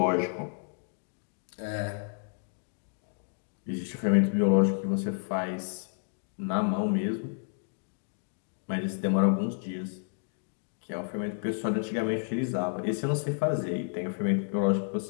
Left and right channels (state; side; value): silent; right; digital silence